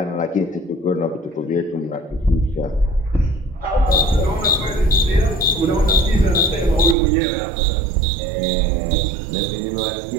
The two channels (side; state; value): left; drops out; at 7.0 s